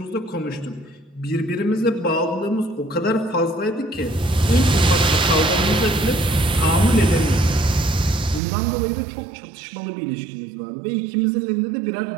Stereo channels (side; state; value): left; drops out; at 8.4 s